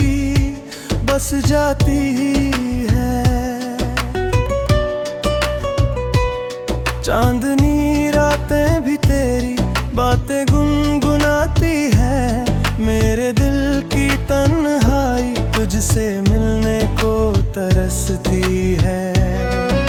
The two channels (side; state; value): both; identical; correlation 1.00